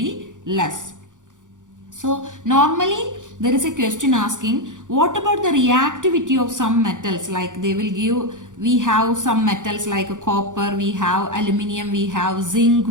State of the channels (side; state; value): left; late; 0.87 ms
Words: less. So normally there is a question asking, what about the reactivity of some metals? Like they will give, we have some metals like copper, we have aluminium, we have zinc,